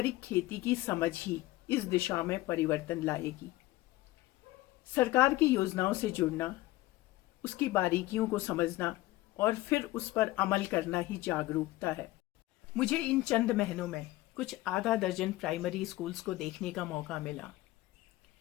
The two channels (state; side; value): quieter; right; 17.9 dB